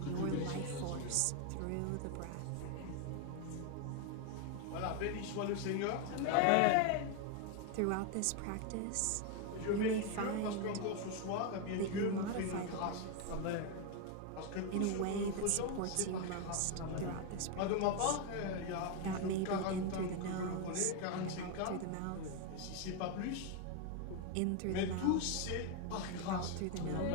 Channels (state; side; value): different; both; correlation 0.01